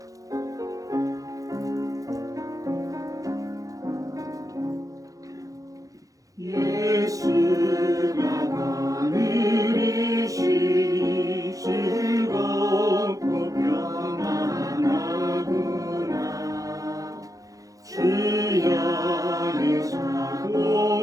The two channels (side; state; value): left; late; 0.17 ms